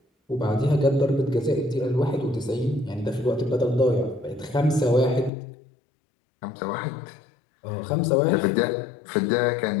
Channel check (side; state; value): right; drops out; at 5.3 s